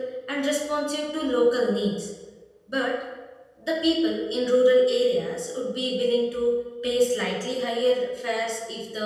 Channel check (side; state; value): both; identical; correlation 1.00